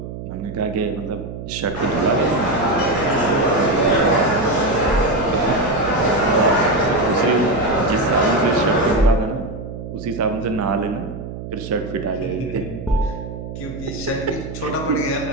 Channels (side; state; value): right; noise; hum, 10 dB below the sound